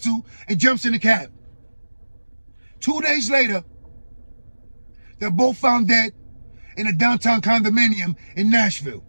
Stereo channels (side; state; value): both; inverted; correlation -1.00